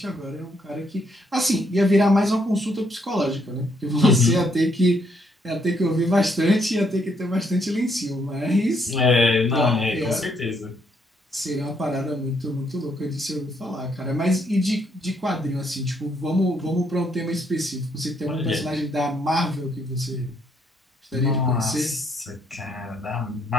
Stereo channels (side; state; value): both; normal; correlation 0.72